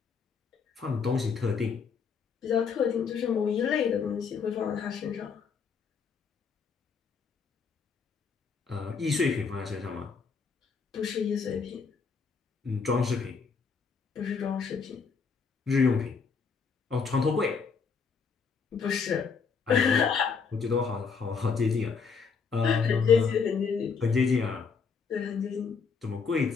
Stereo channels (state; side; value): quieter; right; 5.6 dB